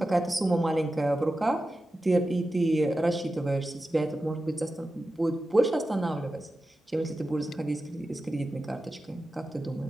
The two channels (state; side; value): normal; both; correlation 0.93